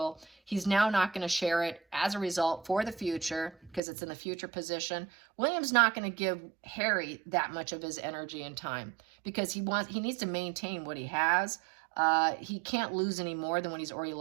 He's now not going to share it as a result for the future, because it's in the future position. William's not going to give Harry that much of his energy and time, because he needs to maintain what he has. He can't lose any more than what he's already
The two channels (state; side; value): drops out; left; at 3.8 s